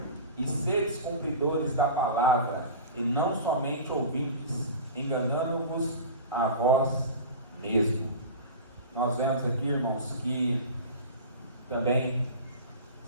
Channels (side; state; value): both; inverted; correlation -0.33